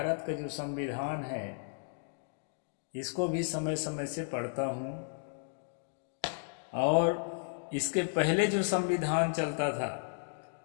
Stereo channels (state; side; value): silent; right; digital silence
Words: का जो संविधान है इसको भी समय समय से पढ़ता हूँ। और इसके पहले जो संविधान चलता था,